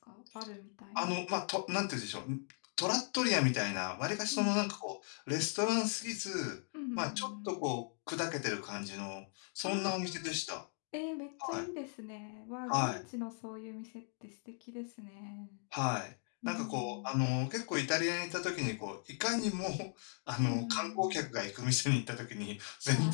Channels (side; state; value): right; silent; 52 dB below the other